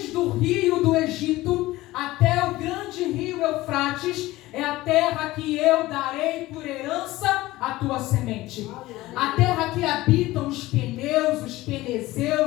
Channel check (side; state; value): right; quieter; 17.9 dB